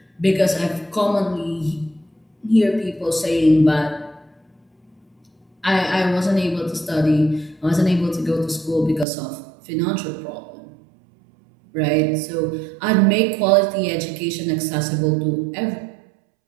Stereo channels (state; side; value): drops out; left; at 9.1 s